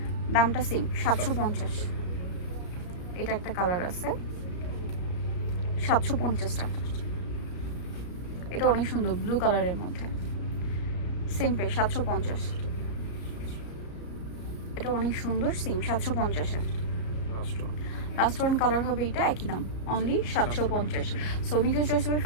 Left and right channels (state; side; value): late; right; 34 ms